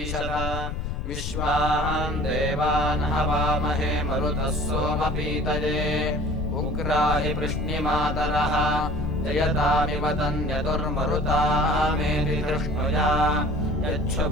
विश्वान् देवान् हवामहे मरुतः सोमपीतये उग्राहि वृष्णिमातरः जयतामिव तन्यतुर्मरुतामेति धृष्णुया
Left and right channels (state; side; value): noise; left; rumble, 4 dB below the sound